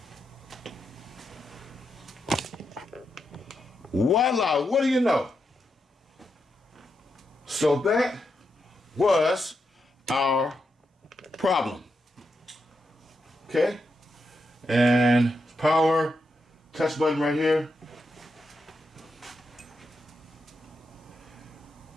Voila, what do you know? So that was our problem. Okay? And power, touch button right here.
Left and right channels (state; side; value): normal; both; correlation 0.84